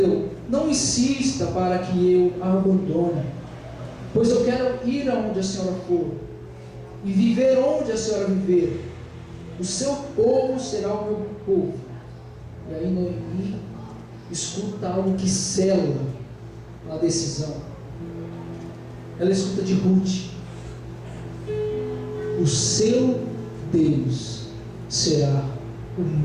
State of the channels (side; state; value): both; identical; correlation 1.00